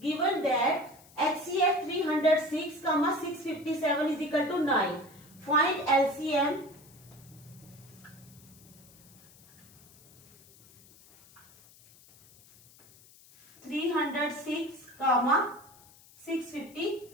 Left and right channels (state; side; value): noise; left; hiss, 25 dB below the sound